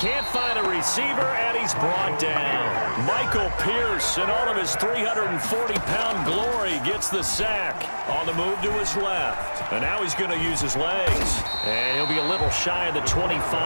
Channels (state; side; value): inverted; both; correlation -1.00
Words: find a receiver, and he's brought down. Michael Pierce, in all of his 340-pound glory, gets the sack on the move to his left. And now he's going to use his legs. And he'll be a little shy of the